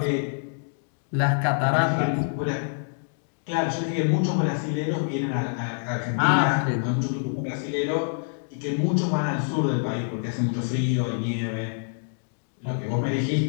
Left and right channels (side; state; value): right; silent; digital silence